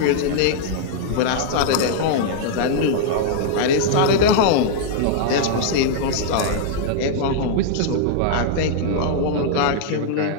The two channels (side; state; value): both; different; correlation -0.01